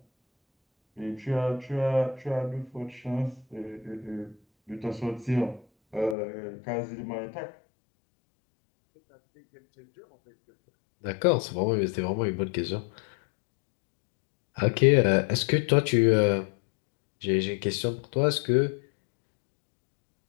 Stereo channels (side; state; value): right; drops out; at 6.2 s